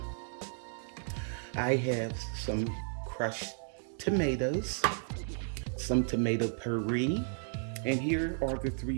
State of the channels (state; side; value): silent; left; 55 dB below the other